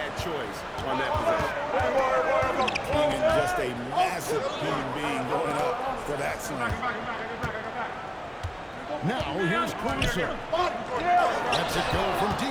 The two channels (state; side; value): identical; both; correlation 1.00